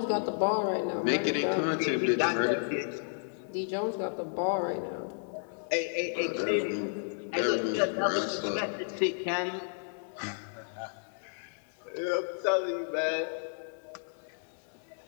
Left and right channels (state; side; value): silent; right; digital silence